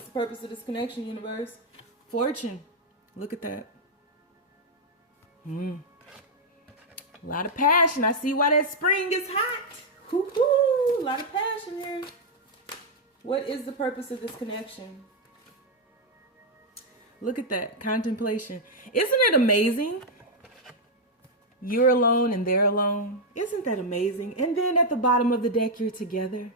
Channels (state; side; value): normal; both; correlation -0.02